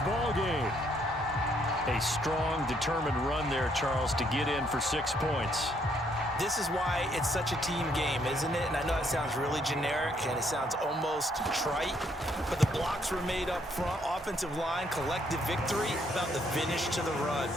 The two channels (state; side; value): normal; both; correlation 0.70